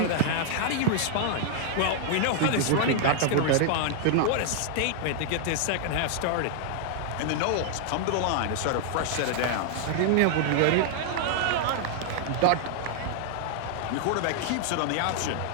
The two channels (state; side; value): different; both; correlation -0.01